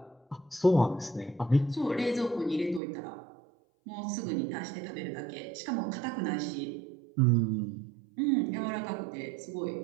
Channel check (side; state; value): left; drops out; at 2.8 s